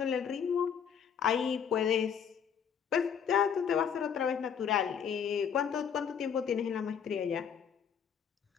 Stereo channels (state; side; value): quieter; right; 7.6 dB